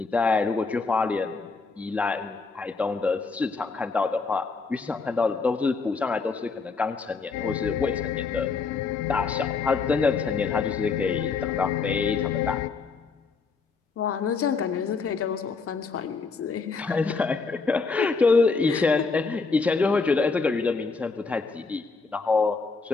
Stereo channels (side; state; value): right; quieter; 4.6 dB